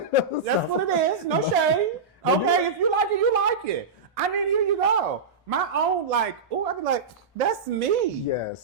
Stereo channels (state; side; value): quieter; left; 4.5 dB